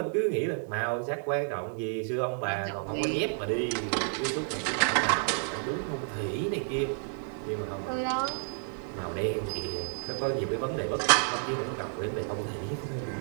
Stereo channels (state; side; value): silent; left; 57 dB below the other